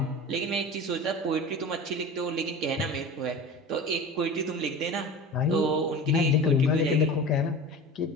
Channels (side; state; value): both; normal; correlation 0.34